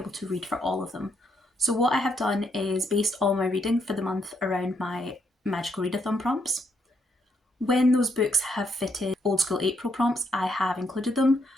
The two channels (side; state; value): both; normal; correlation 0.75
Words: to read for all of them. So what I have done is based all my reading for the month around my Magical Readathon prompts. When those books have fitted Old School April prompts, I have included them.